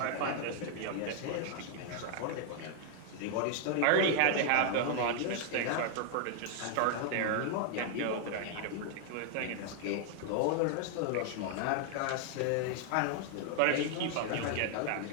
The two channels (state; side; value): different; both; correlation 0.00